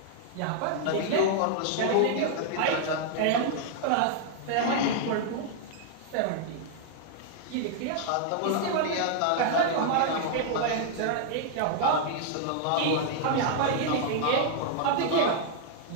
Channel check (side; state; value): both; different; correlation 0.00